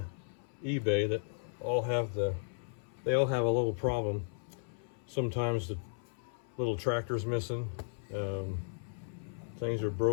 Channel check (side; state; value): right; silent; 54 dB below the other